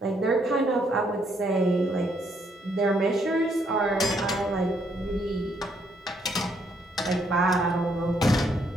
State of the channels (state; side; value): normal; both; correlation 0.72